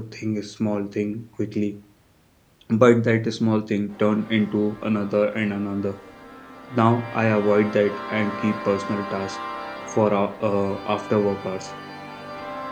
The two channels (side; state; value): both; identical; correlation 1.00